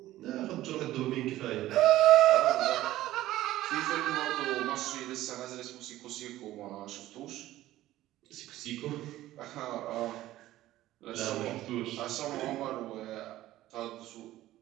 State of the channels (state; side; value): quieter; left; 15.1 dB